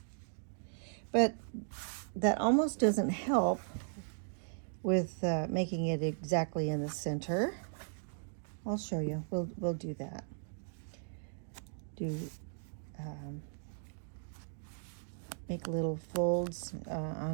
but that almost doesn't help with making it exactly in the center. I'll show you. We'll do that. Make little folds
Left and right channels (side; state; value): left; silent; digital silence